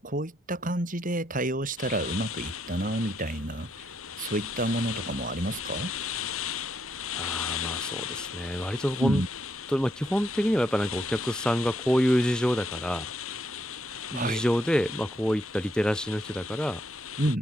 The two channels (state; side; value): normal; both; correlation 0.76